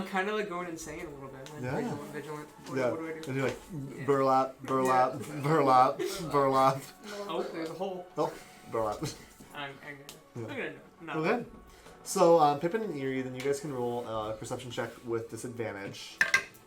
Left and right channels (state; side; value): identical; both; correlation 1.00